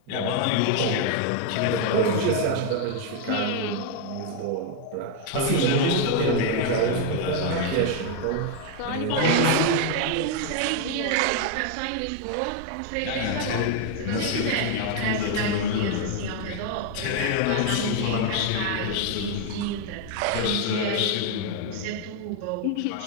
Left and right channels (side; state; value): both; different; correlation 0.00